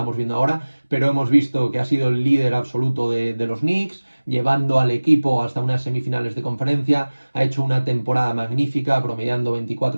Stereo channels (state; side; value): inverted; both; correlation -1.00